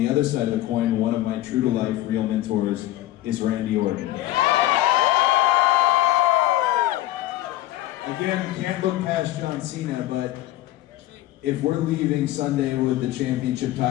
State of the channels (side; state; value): right; quieter; 15.3 dB